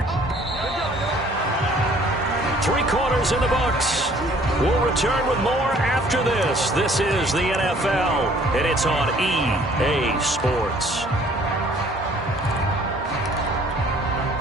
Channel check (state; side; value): normal; both; correlation 0.57